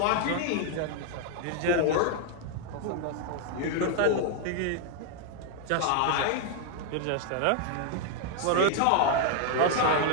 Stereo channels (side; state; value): both; different; correlation 0.00